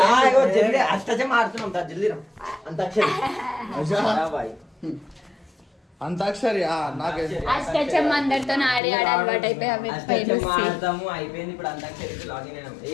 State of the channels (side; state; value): right; drops out; at 8.8 s